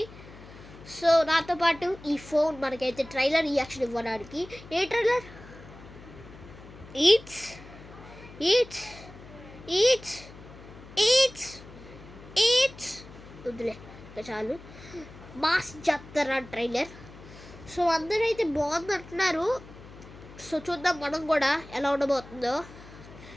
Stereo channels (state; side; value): noise; left; hum, 18 dB below the sound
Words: సో నాతో పాటు ఈ ఫోన్ మనకైతే ట్రైలర్ రియాక్షన్ ఇవ్వడానికి. ఏ ట్రైలర్? ఈట్స్ ఈట్స్ ఈట్స్ ఈట్స్ ఈట్స్ వద్దులే చాలు. మాస్ జాతర ట్రైలర్. సో అందరూ అయితే బాగుంది అంటున్నారు. సో చూద్దాం మనం కూడా ఎలా ఉండబోతుందో.